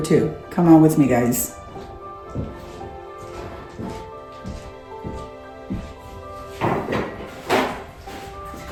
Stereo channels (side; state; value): both; identical; correlation 1.00